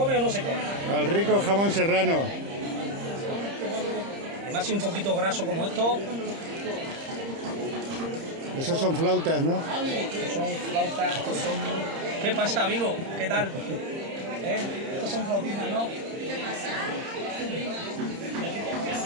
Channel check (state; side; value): late; left; 30 ms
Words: o no se come? Al rico jamón serrano. Además, si un poquito graso como esto, Esos son flautas, ¿no? estos son flautas, estos son... ¿Qué pasa, amigo? ¿Qué tal? Estos son flautitas, ¿no?